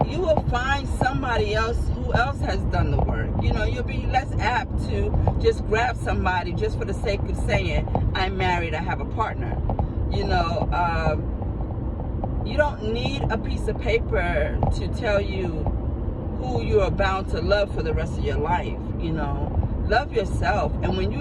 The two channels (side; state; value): both; identical; correlation 1.00